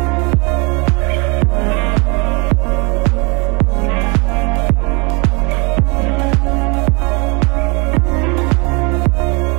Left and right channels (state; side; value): quieter; left; 30.9 dB